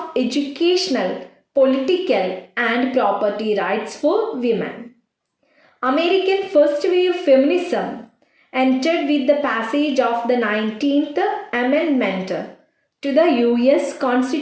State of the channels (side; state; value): both; identical; correlation 1.00